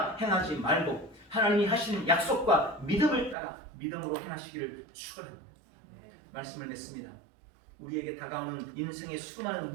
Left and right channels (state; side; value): drops out; left; at 3.4 s